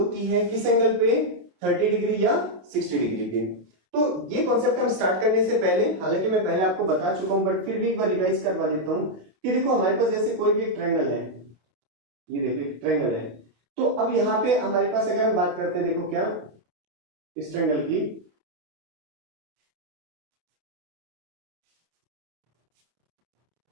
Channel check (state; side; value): late; left; 29 ms